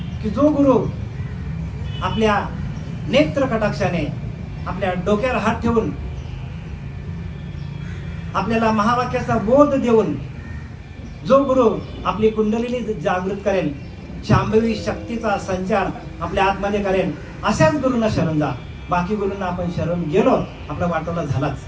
की जो गुरु आपल्या नेत्र कटाक्षाने आपल्या डोक्यावर हात ठेवून आपल्याला महावाक्याचा बोध देऊन जो गुरु आपली कुंडलिनी जागृत करेल, शांभवी शक्तीचा संचार आपल्या आतमध्ये करेल, अशाच गुरुंना शरण जा. बाकी गुरुंना आपण शरण गेलो, आपला वाटोला झालाच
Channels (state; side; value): identical; both; correlation 1.00